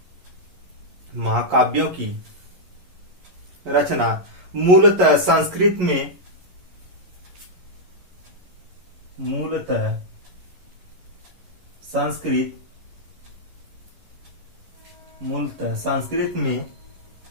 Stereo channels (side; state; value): left; late; 11 ms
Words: महाकाव्यों की रचना मूलतः संस्कृत में